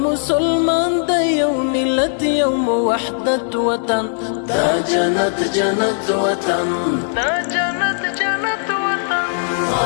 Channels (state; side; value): silent; right; digital silence